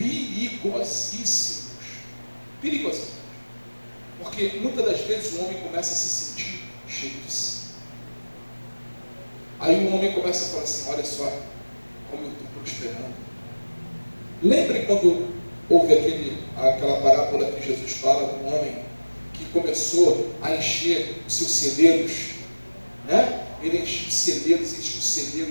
Perigosíssimos. Porque muitas das vezes o homem começa a se sentir cheio de si. Aí o homem começa a falar assim: olha só como eu estou prosperando. Lembre quando houve aquela parábola que Jesus fala do homem que começou a encher os seus celeiros, né? Ele encheu os celeiros, encheu os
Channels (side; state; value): both; inverted; correlation -1.00